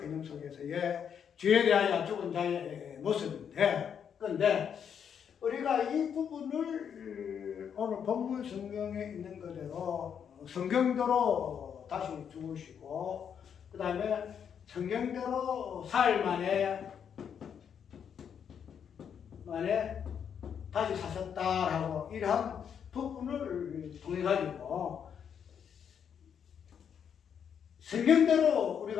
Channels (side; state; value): right; quieter; 7.8 dB